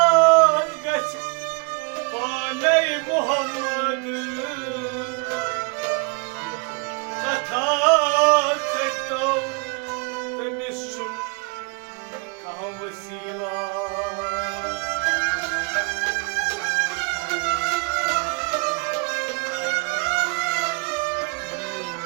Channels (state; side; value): quieter; left; 31.7 dB